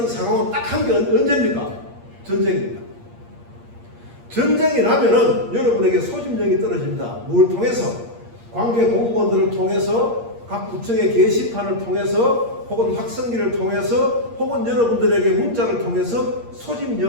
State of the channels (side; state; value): left; late; 8.6 ms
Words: 상황은 딱 한 게 언제입니까? 전쟁입니다. 전쟁이 나면은 여러분에게 소집령이 떨어집니다. 뭘 통해서? 관계 공무원들을 통해서, 각 구청의 게시판을 통해서, 혹은 확성기를 통해서, 혹은 여러분들에게 문자를 통해서